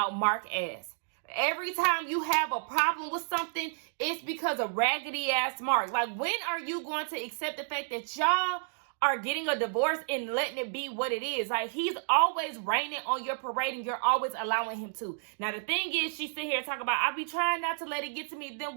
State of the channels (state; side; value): silent; left; digital silence